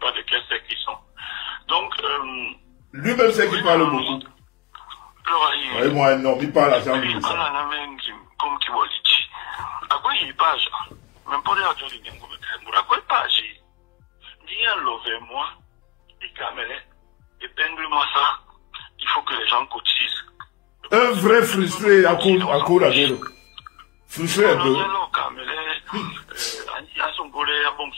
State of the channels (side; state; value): right; quieter; 21.4 dB